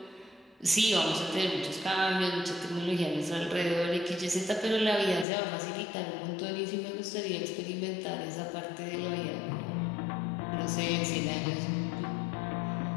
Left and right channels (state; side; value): drops out; right; at 5.2 s